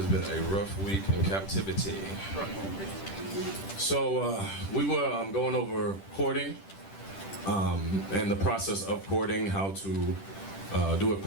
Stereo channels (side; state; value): right; late; 10 ms